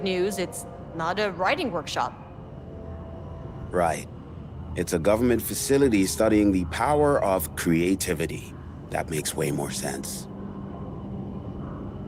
news, it's not a writing workshop. Right. It's a government facility studying the power of creativity. That makes way more sense.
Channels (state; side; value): identical; both; correlation 1.00